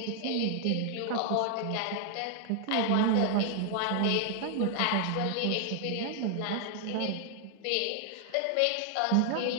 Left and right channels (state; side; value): different; both; correlation 0.00